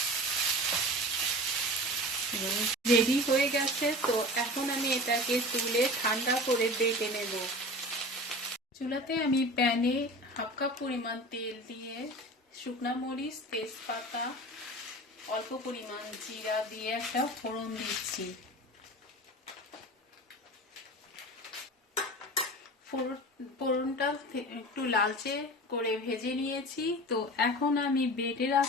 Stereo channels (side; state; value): both; normal; correlation 0.35